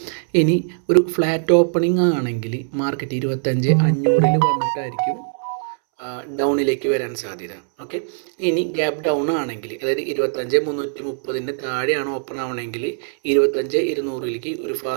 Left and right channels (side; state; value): left; silent; 65 dB below the other